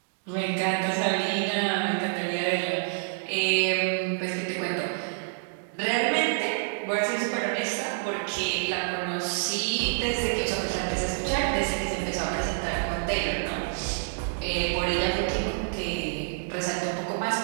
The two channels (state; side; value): silent; left; digital silence